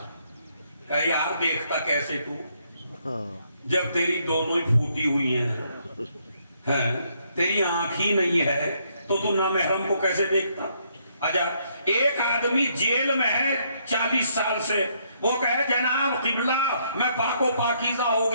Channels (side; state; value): both; inverted; correlation -0.72